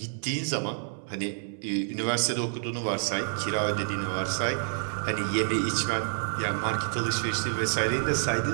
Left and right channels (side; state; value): left; silent; 59 dB below the other